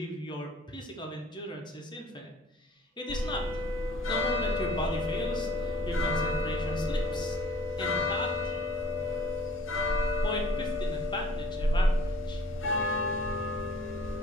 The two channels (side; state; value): both; normal; correlation 0.52